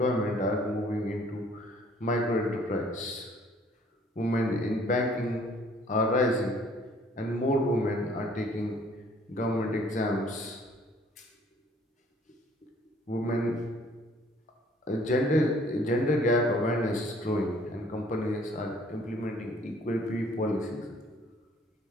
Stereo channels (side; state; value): both; normal; correlation 0.58